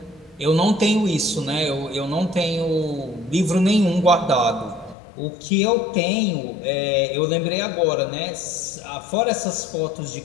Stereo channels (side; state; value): right; drops out; at 5.0 s